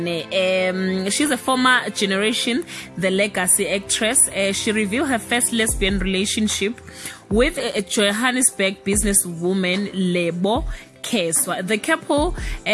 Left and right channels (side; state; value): both; identical; correlation 1.00